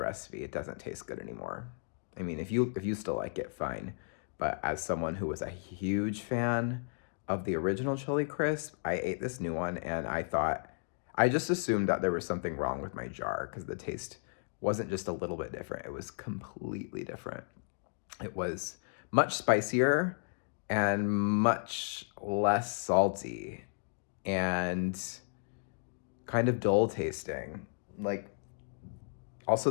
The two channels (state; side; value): silent; right; digital silence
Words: It doesn't taste good anymore. I mean, if you still like it, fine. But as someone who was a huge fan of the original chili crisp, I ate this new one, and I just assumed that there was something wrong with my jar because the taste wasn't just a little bit different. It was completely different. It was much spicier and much less salty and kind of dull tasting. Like, also